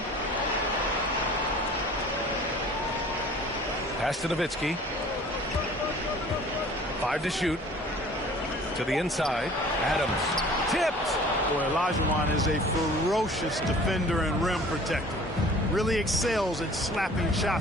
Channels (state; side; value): normal; both; correlation 0.48